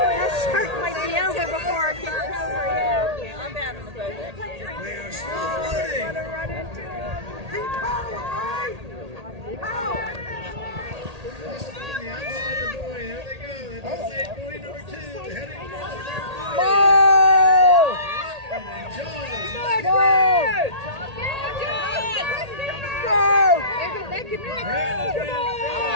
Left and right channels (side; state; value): left; late; 1.8 ms